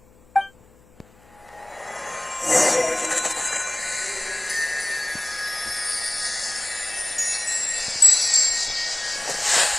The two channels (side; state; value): left; noise; hum, 29 dB below the sound